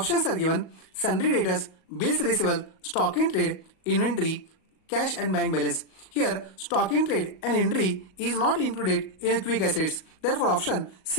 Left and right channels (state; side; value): late; right; 38 ms